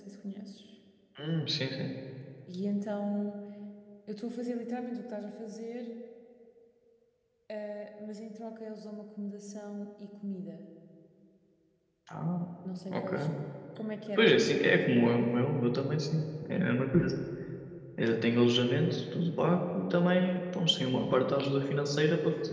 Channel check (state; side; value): identical; both; correlation 1.00